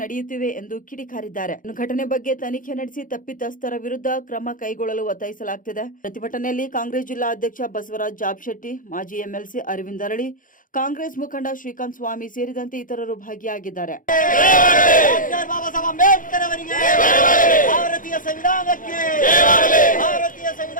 ನಡೆಯುತ್ತಿವೆ ಎಂದು ಕಿಡಿಕಾರಿದ್ದಾರೆ. ಘಟನೆ ಬಗ್ಗೆ ತನಿಖೆ ನಡೆಸಿ ತಪ್ಪಿತಸ್ಥರ ವಿರುದ್ಧ ಕ್ರಮ ಕೈಗೊಳ್ಳಲು ಒತ್ತಾಯಿಸಲಾಗುತ್ತಿದೆ. ಪ್ರತಿಭಟನೆಯಲ್ಲಿ ಕಾಂಗ್ರೆಸ್ ಜಿಲ್ಲಾ ಅಧ್ಯಕ್ಷ ಬಸವರಾಜ್ ಜಾಬಶೆಟ್ಟಿ, ಮಾಜಿ ಎಂಎಲ್ಸಿ ಅರವಿಂದ್ ಅರಳಿ, ಕಾಂಗ್ರೆಸ್ ಮುಖಂಡ ಶ್ರೀಕಾಂತ್ ಸ್ವಾಮಿ ಸೇರಿದಂತೆ ಇತರರು ಭಾಗಿಯಾಗಿದ್ದಾರೆ. ಭಾರತೀಯ ಸಂವಿಧಾನಕ್ಕೆ,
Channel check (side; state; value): right; late; 0.39 ms